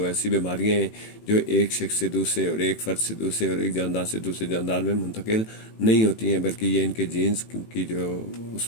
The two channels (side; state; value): right; late; 18 ms